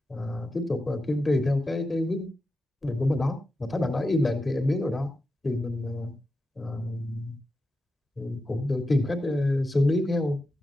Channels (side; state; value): both; normal; correlation 0.90